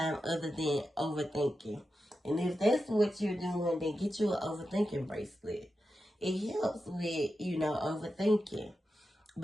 other than overthinking. And if that's what you're doing, then get you an overthinking bracelet. It helps with, overthinking.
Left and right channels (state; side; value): normal; both; correlation 0.90